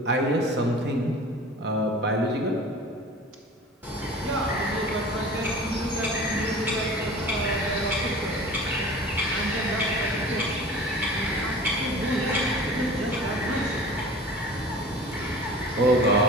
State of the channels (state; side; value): normal; both; correlation 0.40